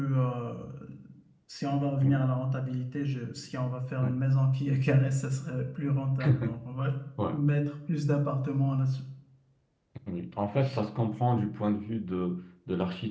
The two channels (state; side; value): identical; both; correlation 1.00